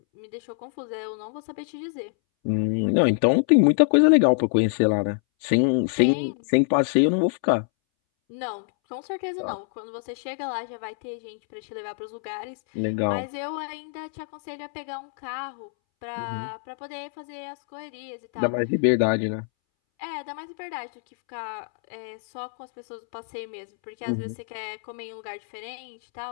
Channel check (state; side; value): silent; right; 61 dB below the other